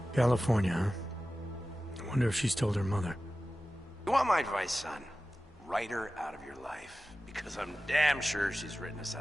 California, huh? I wonder if she's told her mother. You want my advice, son? Write her out of your life. Because I'm damn sure she's written us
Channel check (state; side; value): normal; both; correlation 0.95